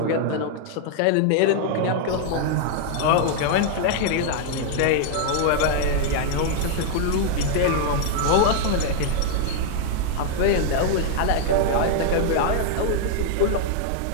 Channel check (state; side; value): different; both; correlation -0.01